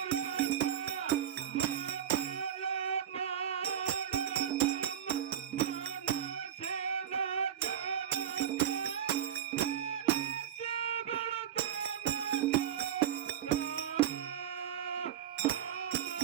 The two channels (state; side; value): quieter; left; 9.7 dB